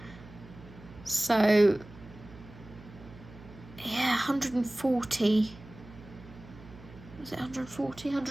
So yeah, 140. Was it 140,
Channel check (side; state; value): right; noise; hum, 19 dB below the sound